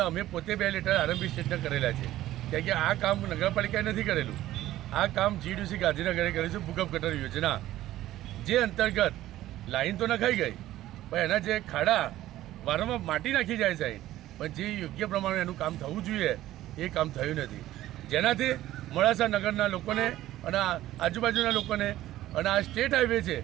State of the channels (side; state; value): left; quieter; 14.5 dB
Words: અમે પોતે 2 લેટર આરંભી સ્ટેટને કરેલા છે કારણ કે આ કામ નગરપાલિકાએ નથી કરેલું। આ કામ જીયુડીસી ગાંધીનગરે કર્યું છે ભૂગર્ભ ગટર યોજના જે અંતર્ગત લાઈન તો નખાઈ ગઈ પણ એના જે ખાડા વારંવાર માટી નાખી જાય છે પણ જે યોગ્ય પ્રમાણે એનું કામ થવું જોઈએ એ કામ થયું નથી જેનાથી મોડાસા નગરના લોકોને અને આજુબાજુના લોકોને અને આ સ્ટેટ હાઈવે છે